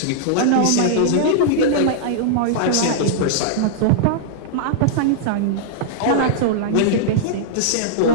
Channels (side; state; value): both; different; correlation -0.01